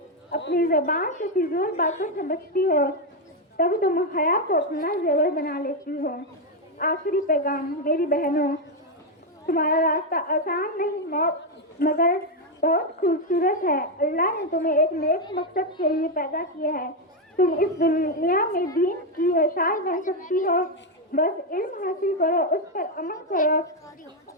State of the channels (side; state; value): both; normal; correlation 0.04